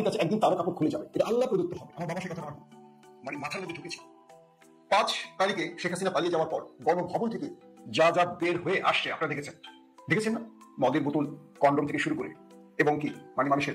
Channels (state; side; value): identical; both; correlation 1.00